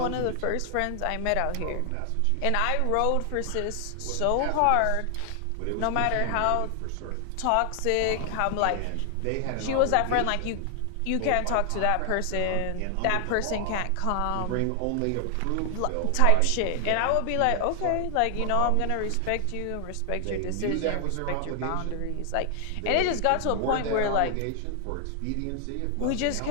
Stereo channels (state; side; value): different; both; correlation 0.00